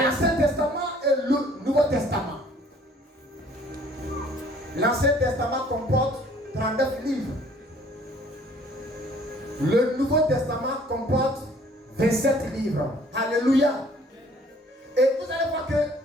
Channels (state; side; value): normal; both; correlation 0.57